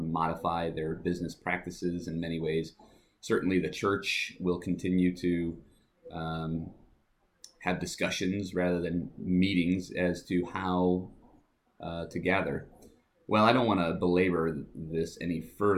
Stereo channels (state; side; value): identical; both; correlation 1.00